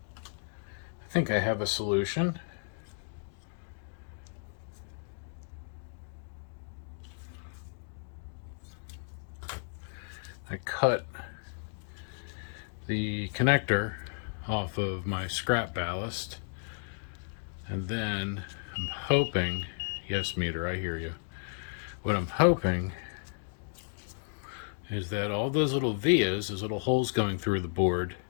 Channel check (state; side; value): silent; right; digital silence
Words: I think I have a solution. I cut the connector off of my scrap ballast, and then I'm hoping, yes meter, I hear you. What I'm hoping is that all those little vias, those little holes going through the board,